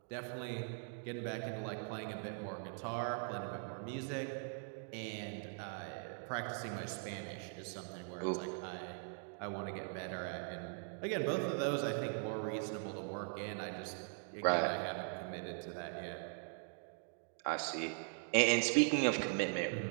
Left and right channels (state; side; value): silent; left; 50 dB below the other